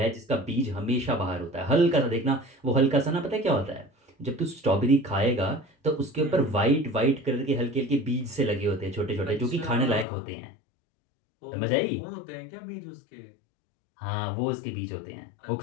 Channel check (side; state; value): right; drops out; at 10.1 s